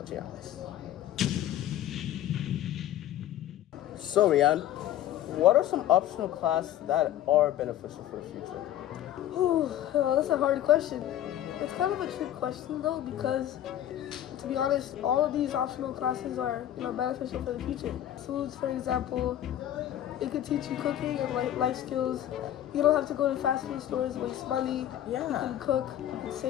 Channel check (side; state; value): right; quieter; 12.0 dB